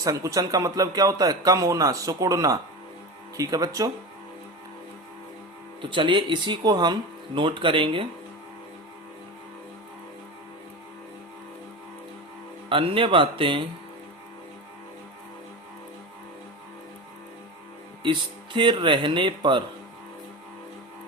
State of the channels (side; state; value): both; normal; correlation 0.25